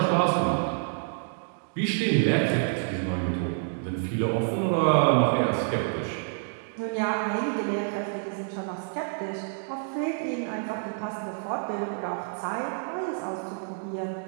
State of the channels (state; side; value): silent; left; digital silence